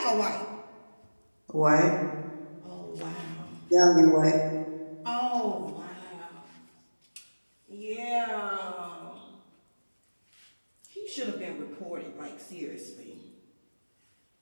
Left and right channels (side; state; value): both; inverted; correlation -1.00